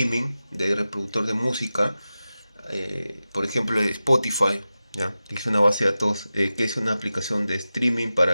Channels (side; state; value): both; inverted; correlation -0.94